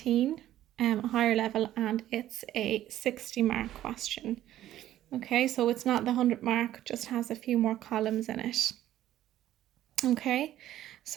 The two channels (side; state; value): left; quieter; 13.1 dB